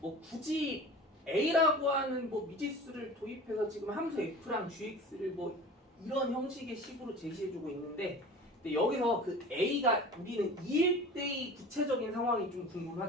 굳이 A라고 하는 뭐 미지수를 도입해서 지금 함수 F랑 GX를 뭐 이런 형식의 식으로 제시해주고 있는데, 근데 여기서 그 A가 우리는 2일 때의 구체적인 상황이 좀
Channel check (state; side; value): normal; both; correlation 0.38